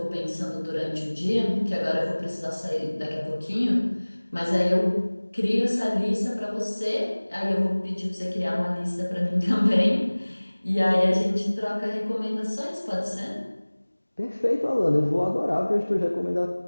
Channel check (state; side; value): inverted; both; correlation -1.00